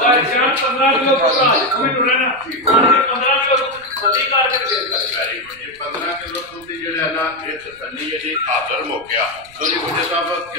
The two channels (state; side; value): noise; right; rumble, 27 dB below the sound